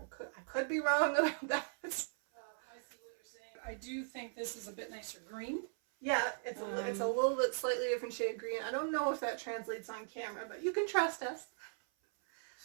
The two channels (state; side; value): silent; left; 52 dB below the other